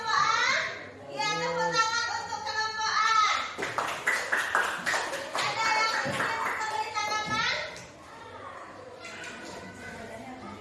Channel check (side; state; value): both; identical; correlation 1.00